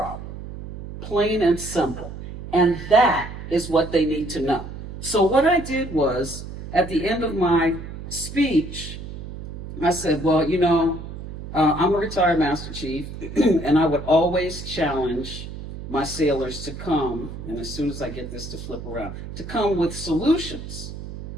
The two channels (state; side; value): noise; right; hum, 10 dB below the sound